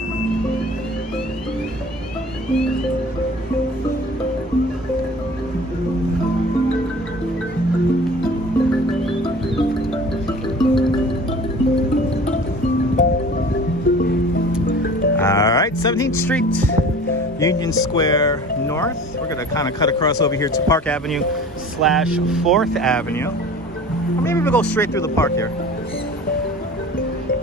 17th Street, Union Square North. We're gonna kind of cut across over here to Park Avenue / 4th Avenue. Or maybe we'll go straight through the park here.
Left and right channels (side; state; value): both; normal; correlation 0.43